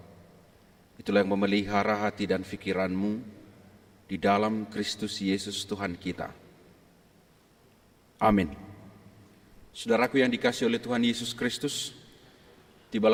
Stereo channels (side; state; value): both; identical; correlation 1.00